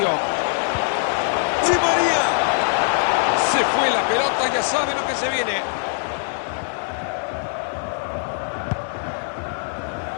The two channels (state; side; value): silent; right; 64 dB below the other